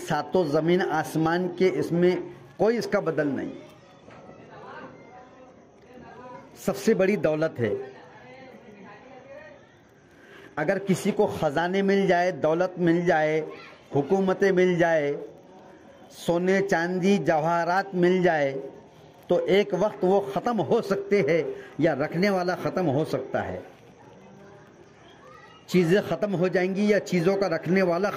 ज़मीन आसमान के इसमें कोई इसका बदल नहीं। सबसे बड़ी दौलत है। अगर किसी को ख़जाने मिल जाए, दौलत मिल जाए, हुकूमतें मिल जाए, सोने चांदी जवाहरात मिल जाए तो एक वक्त वो ख़त्म हो सकते हैं या रखने वाला ख़त्म हो सकता है। चीज़ें ख़त्म हो जाएंगी या चीज़ों का रखने वाला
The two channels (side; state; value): both; identical; correlation 1.00